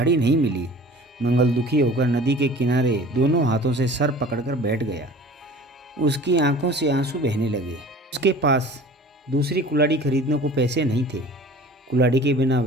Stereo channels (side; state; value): both; normal; correlation 0.44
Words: नहीं मिली। मंगल दुखी होकर नदी के किनारे दोनों हाथों से सर पकड़कर बैठ गया। उसकी आंखों से आंसू बहने लगे। उसके पास दूसरी कुल्हाड़ी खरीदने को पैसे नहीं थे। कुल्हाड़ी के बिना